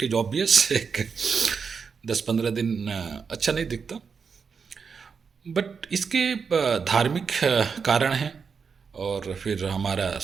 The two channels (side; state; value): left; quieter; 5.8 dB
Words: इज़ ऑब्वियस, एक 10-15 दिन अच्छा नहीं दिखता। बट इसके धार्मिक कारण हैं और फिर हमारा